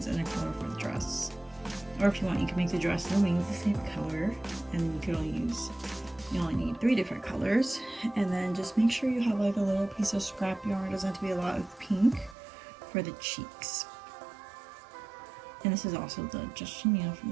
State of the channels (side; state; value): left; drops out; at 12.4 s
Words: and a color for the dress. Or if you want, you can make the dress and the wings the same color, and you only need 3 different colors. And then just make sure you have like a little piece of scrap yarn. It doesn't have to be a lot of pink for the cheeks. And this is also the just chenille from